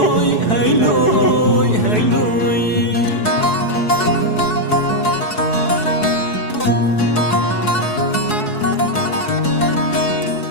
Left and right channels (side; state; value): right; late; 4.7 ms